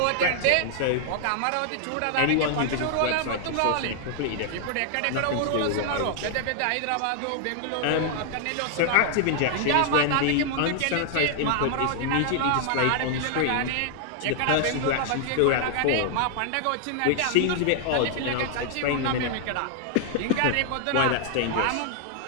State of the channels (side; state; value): both; different; correlation 0.00